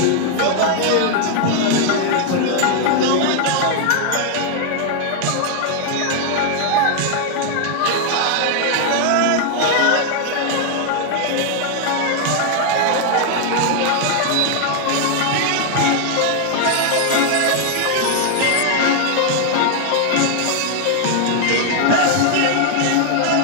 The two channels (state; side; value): different; both; correlation 0.00